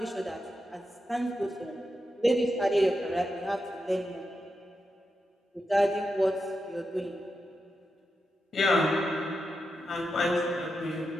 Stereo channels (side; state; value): both; normal; correlation 0.88